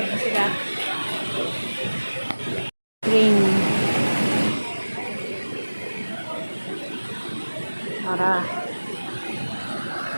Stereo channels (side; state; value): both; inverted; correlation -1.00